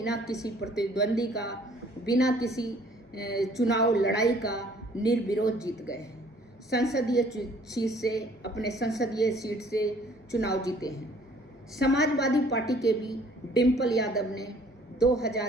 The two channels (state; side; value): normal; both; correlation 0.57